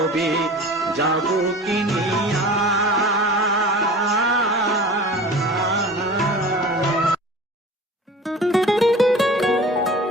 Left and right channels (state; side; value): normal; both; correlation 0.39